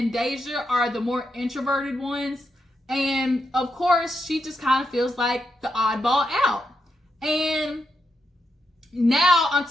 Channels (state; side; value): normal; both; correlation 0.83